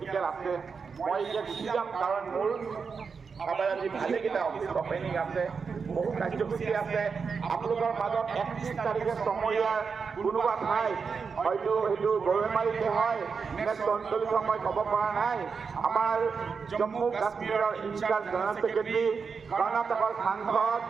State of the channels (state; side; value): quieter; left; 5.5 dB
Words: আছে মই এতিয়া গুচি যাম কাৰণ মোৰ আজি ভালেকেইটা অফিচ অপেনিং আছে বহু কাৰ্যসূচী আছে আপোনালোকৰ মাজত 31 তাৰিখে চমৰীয়াৰ কোনোবা ঠাই হয়তো সেইটো গৰৈমাৰীতে হয় নে চন্দলিত মই ক'ব পৰা নাই আমাৰ জম্মু কাশ্মীৰৰ ইনচাৰ্জ জেনেৰেল ছেক্ৰেটাৰী কৰ্ণাটকৰ সাংসদ